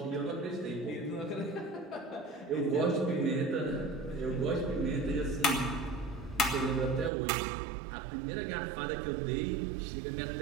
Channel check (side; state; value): left; drops out; at 7.1 s